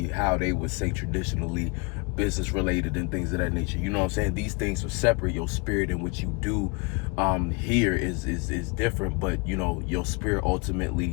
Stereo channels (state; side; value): quieter; right; 29.6 dB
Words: how they would say traditionally business related and things of that nature, you know what I'm saying? These things are separate. Your spirit and what you do here is different, but your spirit